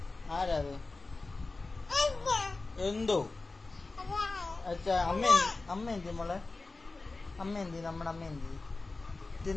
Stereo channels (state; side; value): quieter; right; 3.5 dB